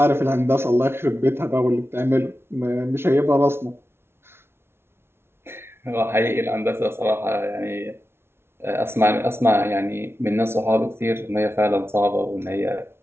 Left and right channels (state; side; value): late; left; 0.12 ms